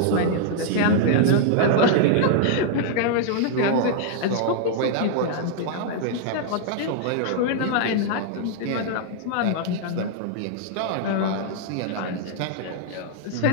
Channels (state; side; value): different; both; correlation -0.01